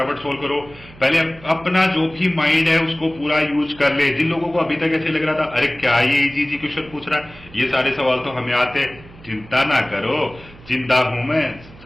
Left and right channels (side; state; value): right; noise; hum, 21 dB below the sound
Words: सोल्व करो। पहले अपना जो भी माइंड है उसको पूरा यूज कर ले। जिन लोगों को अभी तक ऐसे लग रहा था अरे क्या ये इजी इजी क्वेश्चन पूछ रहा है, ये सारे सवाल तो हमें आते, चिंता ना करो, चिंता हूं मैं,